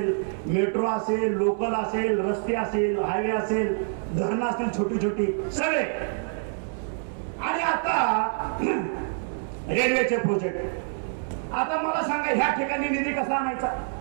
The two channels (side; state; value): left; silent; digital silence